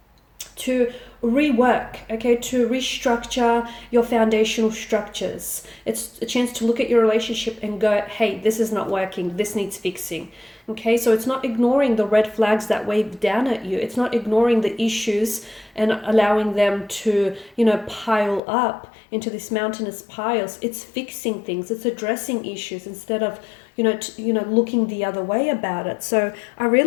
to rework, okay, to restructure your foundational structures. It's a chance to look at your relationship and go, hey, this is not working, this needs fixing. Okay, so it's not ignoring the red flags that wave down at you. It's not ignoring the issues and allowing them to, pile up into these mountainous piles. It's fixing things. It's addressing issues instead of, looking the other way about it. So I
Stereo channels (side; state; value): right; drops out; at 18.4 s